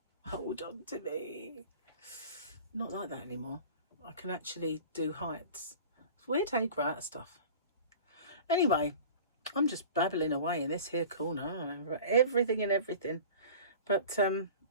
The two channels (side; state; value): both; inverted; correlation -0.40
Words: hold on to me. not like that anymore. I can actually do heights. It's weird how you grow out of stuff. Anyway, I'm just babbling away in this here corner. I remember everything and everything. But